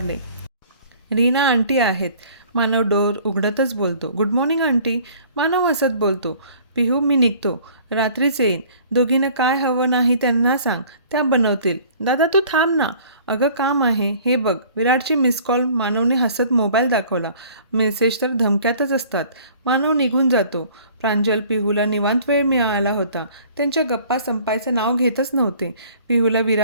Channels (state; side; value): inverted; both; correlation -0.52